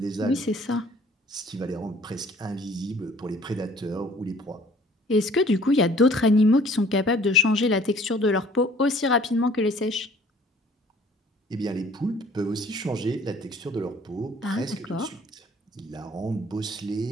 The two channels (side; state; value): both; normal; correlation 0.54